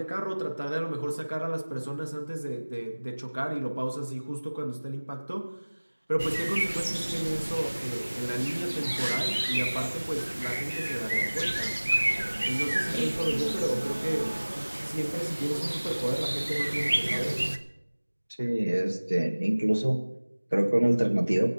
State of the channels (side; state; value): both; inverted; correlation -1.00